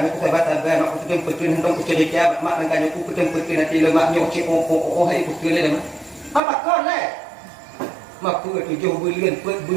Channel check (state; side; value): drops out; left; at 6.4 s